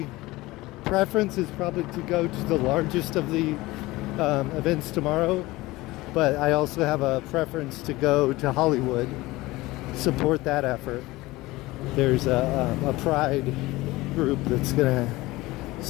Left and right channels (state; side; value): quieter; right; 19.8 dB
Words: preference is probably to go to the largest of the events tomorrow, but I also have a preference to go to Hollywood, support that effort. There's a pride group that's gonna